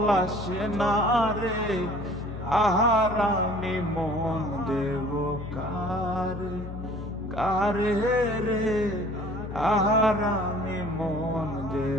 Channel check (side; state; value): left; noise; hum, 9 dB below the sound